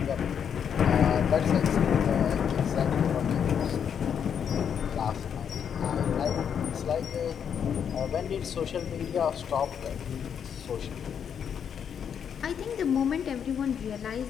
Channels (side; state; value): right; quieter; 7.9 dB